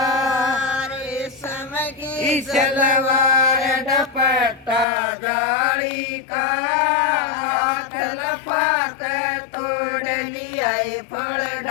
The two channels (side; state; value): right; drops out; at 4.9 s